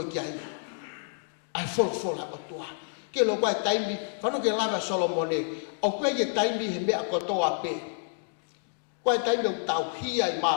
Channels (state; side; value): silent; right; digital silence